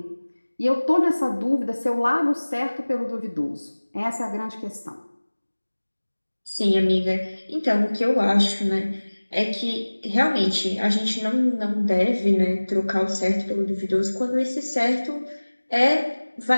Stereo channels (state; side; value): inverted; both; correlation -1.00